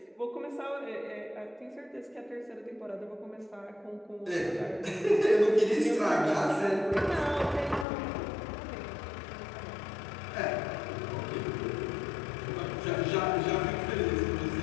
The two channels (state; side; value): drops out; right; at 7.9 s